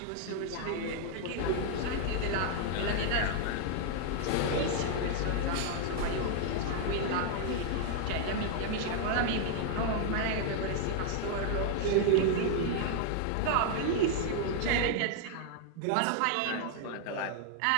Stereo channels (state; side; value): different; both; correlation 0.00